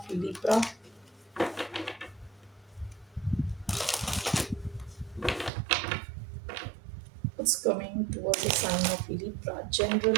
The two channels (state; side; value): drops out; left; at 5.5 s